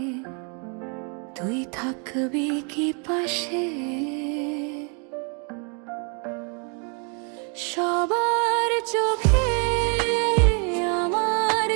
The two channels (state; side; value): quieter; left; 37.4 dB